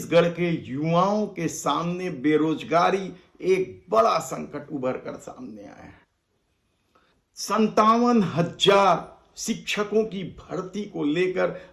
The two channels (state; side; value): identical; both; correlation 1.00